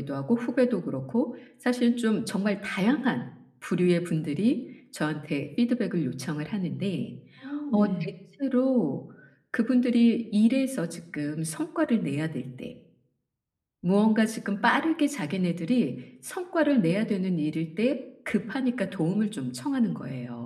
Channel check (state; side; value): identical; both; correlation 1.00